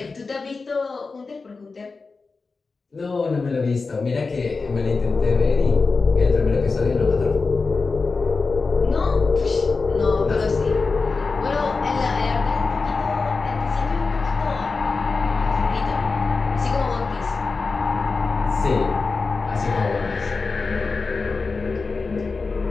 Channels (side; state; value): right; quieter; 4.2 dB